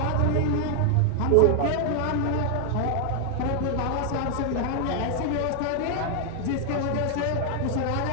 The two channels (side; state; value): both; different; correlation 0.00